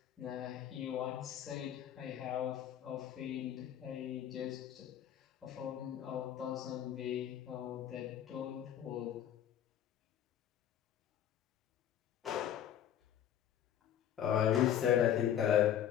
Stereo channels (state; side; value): quieter; right; 10.3 dB